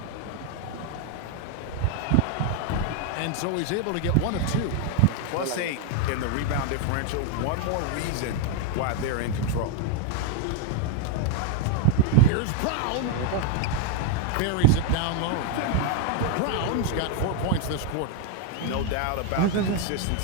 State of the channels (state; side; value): different; both; correlation 0.01